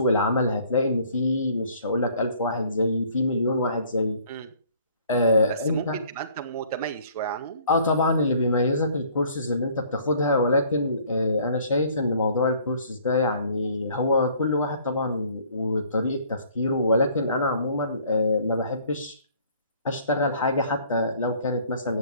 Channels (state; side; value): inverted; both; correlation -0.57